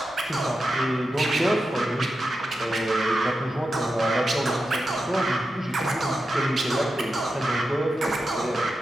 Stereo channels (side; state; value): both; normal; correlation 0.90